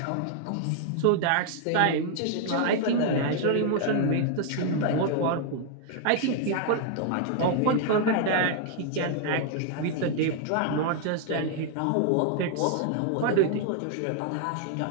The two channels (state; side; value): different; both; correlation 0.00